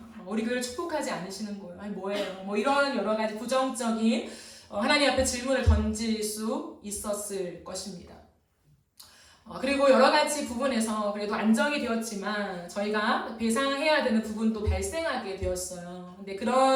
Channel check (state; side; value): identical; both; correlation 1.00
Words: 우리 교회를 축복하지 않으시는 거예요? 아니 뭐예요? 이런 여러 가지 부정적인 하나님 앞에 질문을 던질 수 있었을 것입니다. 그리고 여러 가지 부분에서 그래도 안정이 되었지만 저희가 배상해야 되는 부분도 발생하게 되었어요. 근데